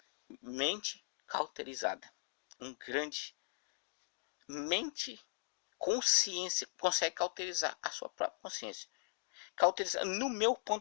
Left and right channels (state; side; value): silent; right; digital silence